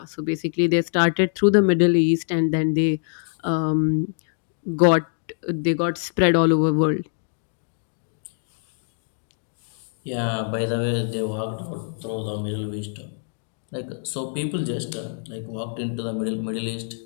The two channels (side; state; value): right; silent; digital silence